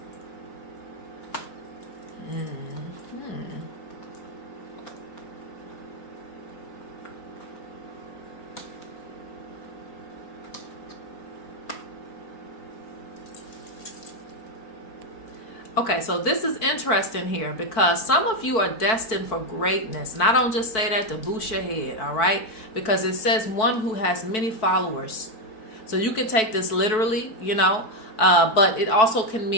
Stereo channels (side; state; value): right; late; 4.6 ms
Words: Okay, so this is interesting here because some of you are destined for greatness. And I don't just say that to boost your head, all right? Because it says one who has many followers. So you can take this literally, but it also can